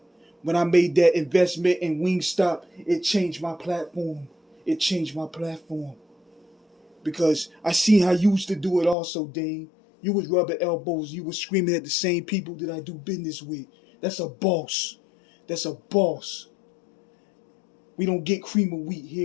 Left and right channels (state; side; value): drops out; right; at 9.0 s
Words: When I made that investment in Wingstop, it changed my platform. It changed my platform. Because I seen how you used to do it also, Dane. You was rubbing elbows. You was screaming at the same people that I do business with. That's a boss. That's a boss. We don't get cream of wheat